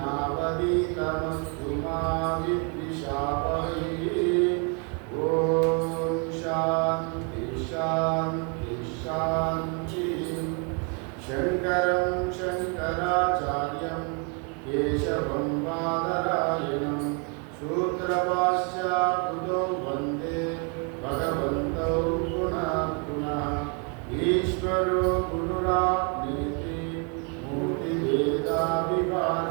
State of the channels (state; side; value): quieter; left; 36.6 dB